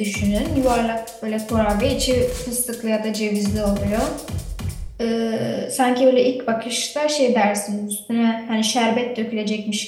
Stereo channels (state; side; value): identical; both; correlation 1.00